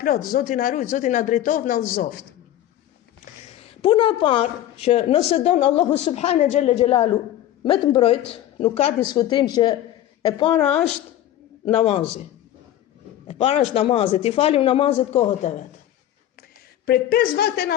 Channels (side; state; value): right; quieter; 12.5 dB